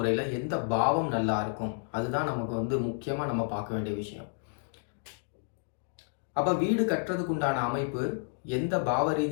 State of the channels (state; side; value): silent; right; digital silence